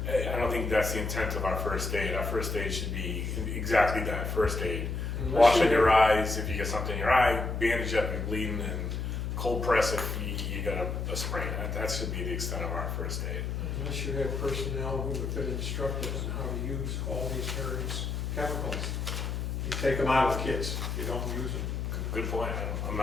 I don't think that's the intent of our first aid. Our first aid should be exactly that, first aid. Washing your eyes if you get something in your eye, bandage up if you're bleeding, and cold press if you got a sprain. That should be the extent of our first aid. Unless you have personnel who have been instructed on how to use all these various chemicals. You take them out of kits, you don't use them. Good point. I'm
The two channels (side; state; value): left; noise; hum, 2 dB below the sound